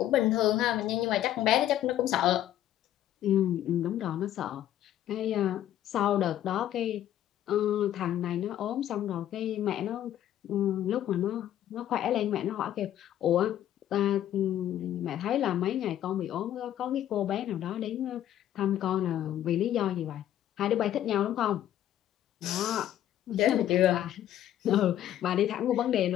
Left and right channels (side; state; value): right; quieter; 11.9 dB